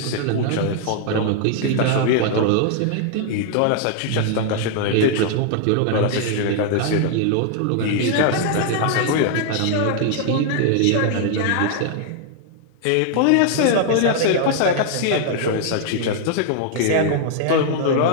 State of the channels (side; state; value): both; different; correlation 0.00